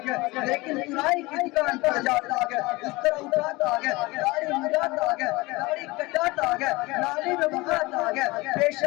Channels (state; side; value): quieter; right; 22.5 dB